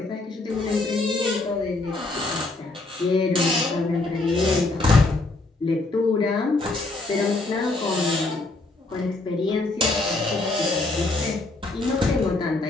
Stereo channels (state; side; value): quieter; right; 3.1 dB